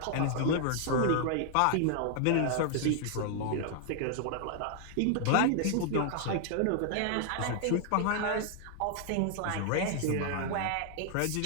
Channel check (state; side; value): different; both; correlation 0.00